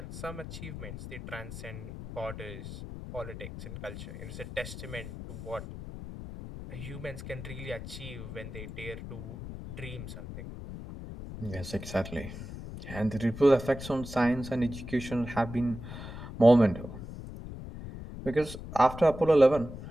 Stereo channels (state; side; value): noise; left; rumble, 10 dB below the sound